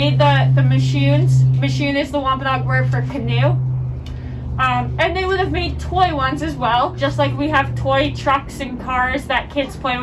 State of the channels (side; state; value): both; identical; correlation 1.00